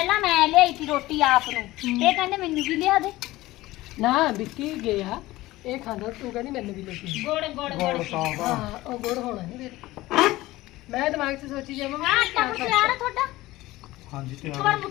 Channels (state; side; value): quieter; right; 17.9 dB